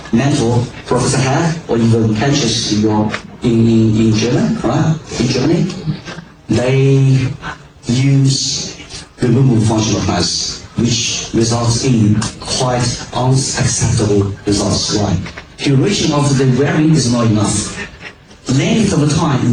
mentor, Professor had, or even Henches in Germany, right? In Germany, they use removable functional pliers, which results in quite unacceptable results. Why? Duration of the wearing is not enough. Length of the time is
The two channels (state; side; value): identical; both; correlation 1.00